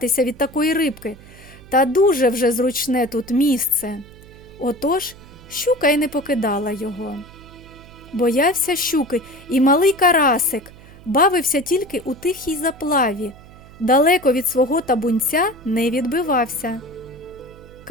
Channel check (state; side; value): noise; right; hum, 21 dB below the sound